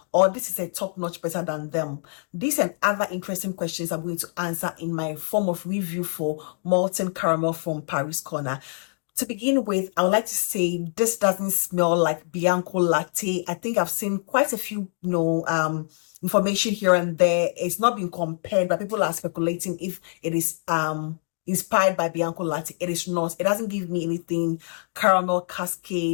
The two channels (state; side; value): silent; right; digital silence